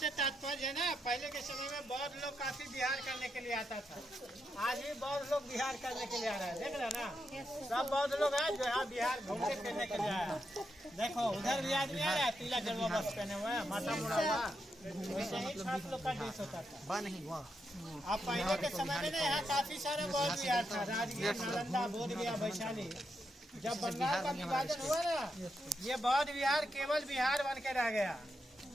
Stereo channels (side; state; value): both; normal; correlation 0.83